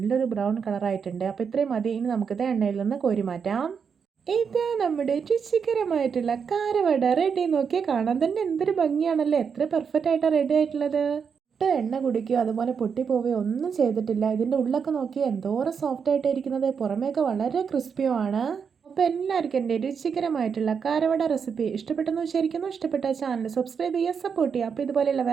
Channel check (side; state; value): left; quieter; 6.5 dB